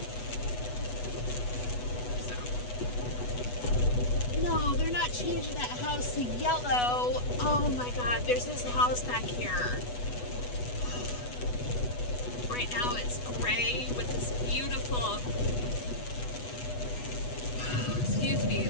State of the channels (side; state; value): right; late; 8.1 ms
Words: No, they're not changing that house to yellow. Oh my God, there's this house back here. Right now it's gray with this beautiful, excuse me,